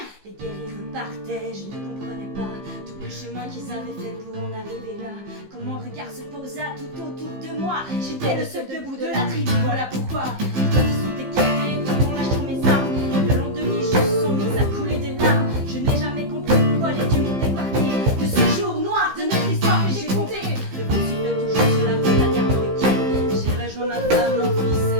Les guerriers repartaient, je ne comprenais pas tout le chemin qu'ils avaient fait pour en arriver là. Quand mon regard se posa tout autour de moi, j'étais le seul debout de la tribu, voilà pourquoi. Les côtes sont écartées, tout en lâchant mes armes, et le long de mes joues sont mises à couler des larmes. Je n'ai jamais compris pourquoi les dieux m'ont épargné de ce jour noir de notre histoire que j'ai compté. Le vent siffle toujours sur la côte américaine. J'ai rejoint ma femme, mon fils et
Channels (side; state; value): left; late; 15 ms